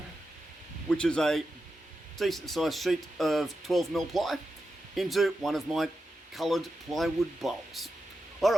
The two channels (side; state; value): both; normal; correlation 0.89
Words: which is a decent sized sheet of 12mm ply, into one of my coloured plywood bowls.